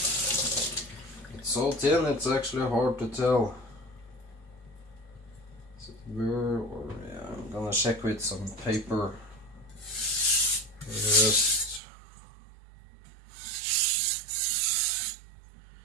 It's so thin, it's actually hard to tell. Is it burr or yeah? I'm gonna check with some paper first.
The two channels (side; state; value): left; drops out; at 11.8 s